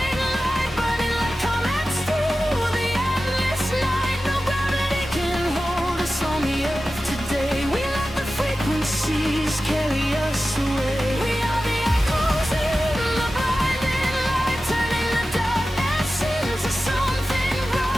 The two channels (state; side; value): normal; both; correlation 0.94